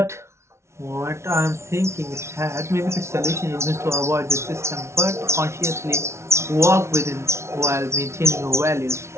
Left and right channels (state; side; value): late; left; 0.13 ms